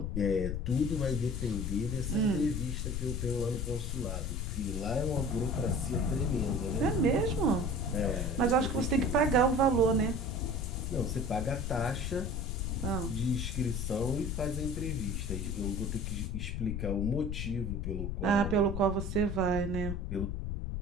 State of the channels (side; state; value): left; noise; rumble, 2 dB below the sound